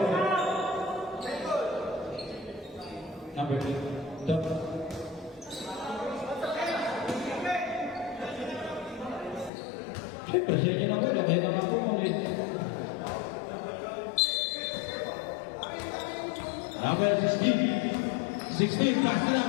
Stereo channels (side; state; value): right; drops out; at 9.5 s